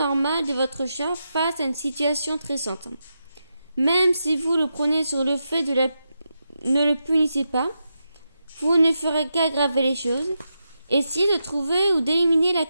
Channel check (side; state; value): both; inverted; correlation -0.87